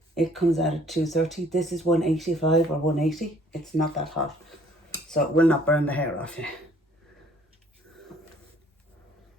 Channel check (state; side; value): normal; both; correlation 0.59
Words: It comes out at 230. This is 185 or 180. It's not that hot, so it will not burn the hair off you.